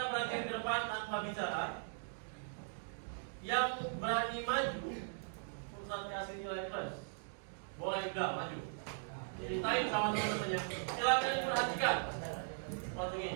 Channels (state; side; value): silent; left; digital silence